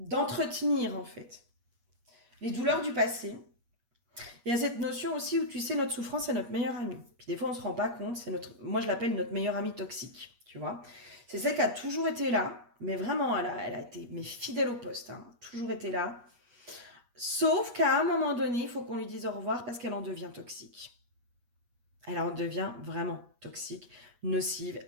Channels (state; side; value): late; left; 8.3 ms